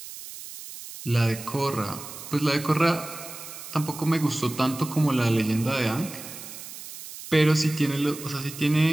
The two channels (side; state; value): right; noise; hiss, 13 dB below the sound